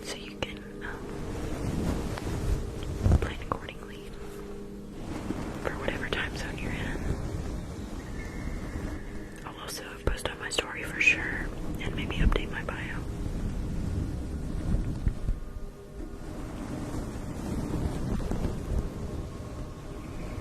so you can plan accordingly for whatever time zone you're in. I'll also post on my story for sure, and maybe update my bio.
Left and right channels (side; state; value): both; identical; correlation 1.00